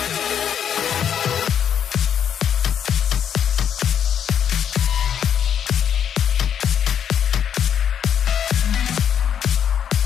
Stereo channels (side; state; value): right; quieter; 8.7 dB